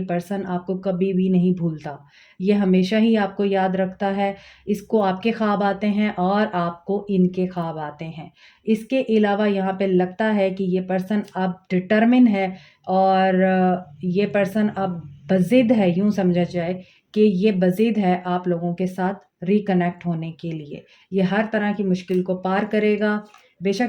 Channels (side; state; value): both; identical; correlation 1.00